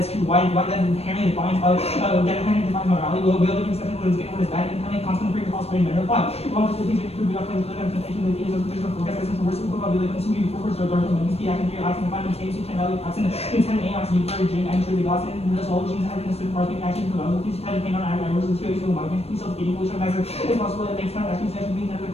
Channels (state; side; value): late; right; 0.29 ms